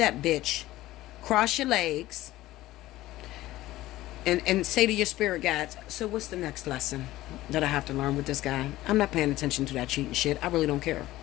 bitch. Cross your legs. And say to your spirit guides, so what's the next lesson that I have to learn with this guy? I'm not paying attention to that cheating shit. I really don't care.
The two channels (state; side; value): quieter; right; 16.3 dB